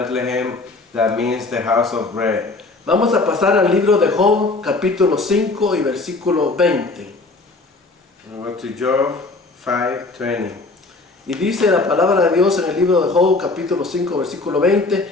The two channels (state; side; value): quieter; right; 3.4 dB